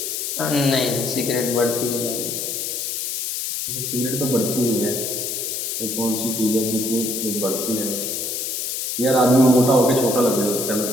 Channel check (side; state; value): left; noise; hiss, 3 dB below the sound